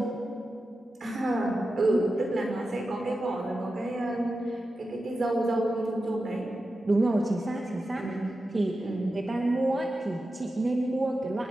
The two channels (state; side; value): normal; both; correlation 0.91